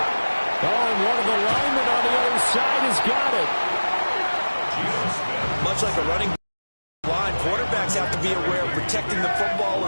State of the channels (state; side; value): inverted; both; correlation -1.00